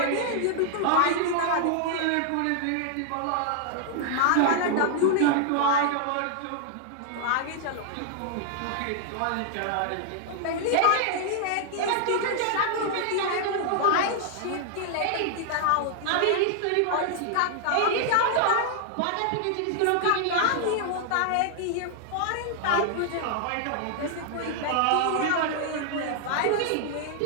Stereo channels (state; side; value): different; both; correlation -0.01